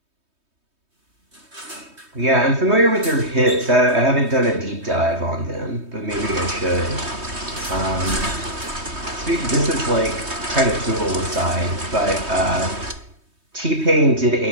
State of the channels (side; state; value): left; late; 3.2 ms